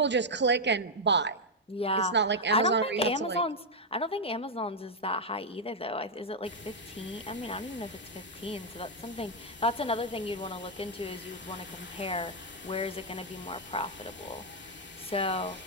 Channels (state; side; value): normal; both; correlation -0.01